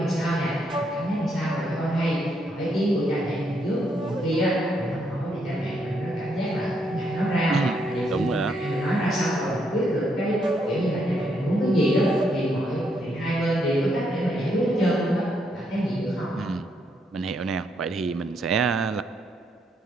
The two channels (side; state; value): both; normal; correlation 0.76